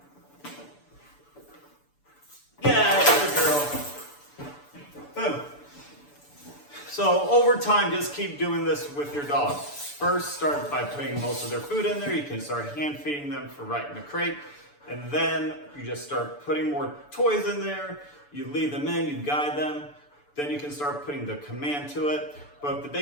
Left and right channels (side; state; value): right; late; 6.9 ms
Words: So over time, just keep doing this with your dog. First, start by putting most of their food in there. You can start hand feeding them for right in the crate. And then you just start putting more toys in there. You lead them in, you guide them. Then you can start putting the command to it. But the